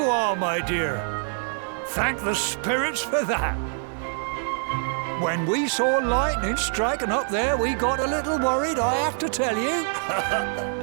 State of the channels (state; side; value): silent; left; digital silence